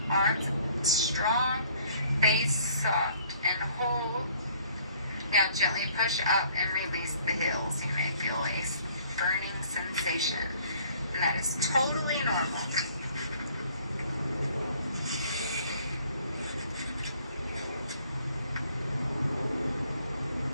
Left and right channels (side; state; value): both; inverted; correlation -0.58